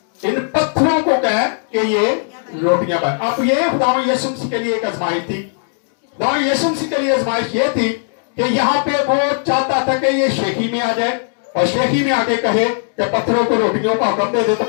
इन पत्थरों को कह कि ये रोटियां बन। अब ये खुदा यीशु मसीह के लिए एक आजमाइश थी। खुदा यीशु मसीह के लिए आजमाइश ये थी कि यहाँ पे वो चाहता था कि ये शेखी में आ जाए और शेखी में आके कहे कि पत्थरों को रोटियों का हुक्म दे दे तो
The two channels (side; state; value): right; silent; digital silence